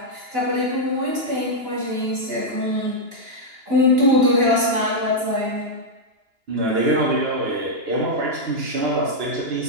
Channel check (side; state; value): left; late; 2.9 ms